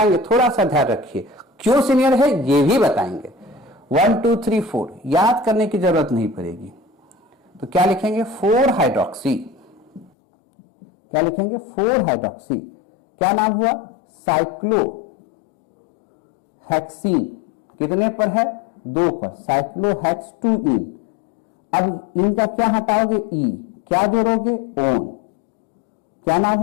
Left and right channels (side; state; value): right; drops out; at 10.1 s